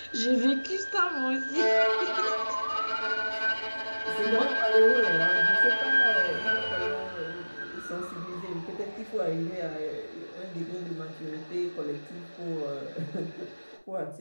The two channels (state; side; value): inverted; both; correlation -1.00